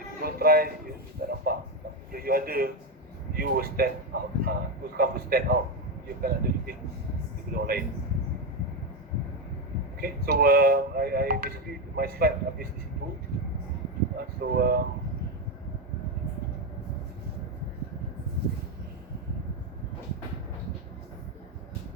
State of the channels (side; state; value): both; normal; correlation 0.10